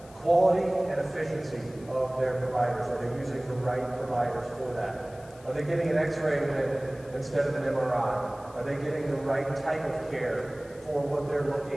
Quality and efficiency of their providers. Are they using the right providers for that? Are they getting an X-ray instead of an MRI? Are they getting the right type of care for what they're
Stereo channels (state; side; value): noise; left; hiss, 25 dB below the sound